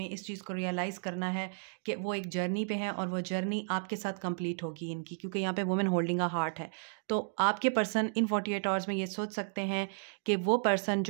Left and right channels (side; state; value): left; silent; digital silence